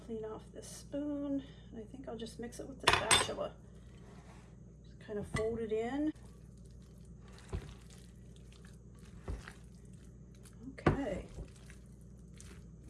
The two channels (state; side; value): identical; both; correlation 1.00